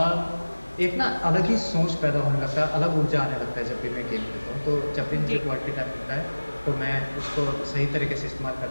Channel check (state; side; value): inverted; both; correlation -1.00